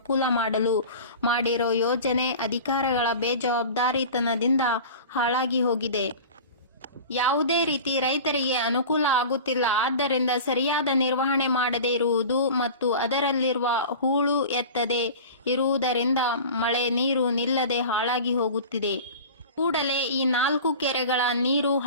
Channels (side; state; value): both; inverted; correlation -0.36